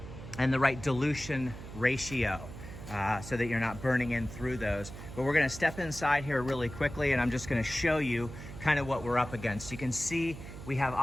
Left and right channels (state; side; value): noise; right; hum, 12 dB below the sound